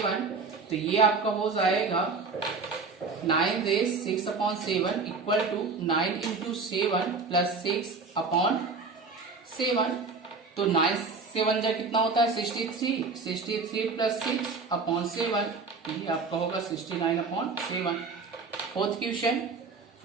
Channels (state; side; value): quieter; left; 4.4 dB